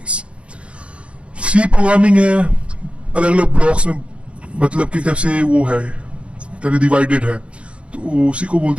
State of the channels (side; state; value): left; late; 0.060 ms